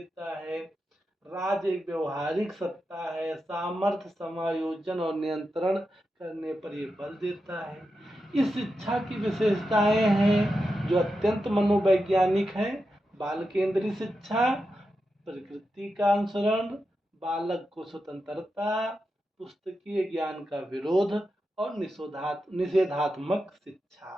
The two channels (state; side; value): normal; both; correlation 0.88